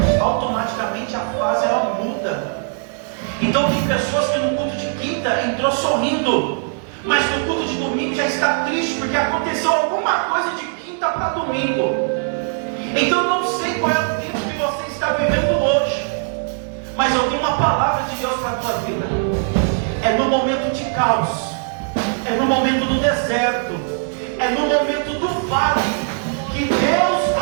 Automaticamente a fase ela muda. Então tem pessoas que no culto de quinta entrou sorrindo, mas no culto de domingo já está triste, porque aconteceu alguma coisa de quinta para domingo. Então eu não sei qual é o tempo que você está vivendo hoje, mas eu tenho uma palavra de Deus para a tua vida. É no momento de caos, é no momento do deserto, é no momento do vale, que Deus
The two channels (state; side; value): silent; left; 63 dB below the other